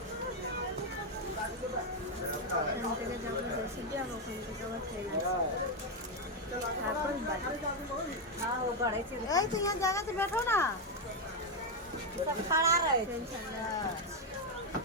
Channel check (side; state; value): both; normal; correlation 0.03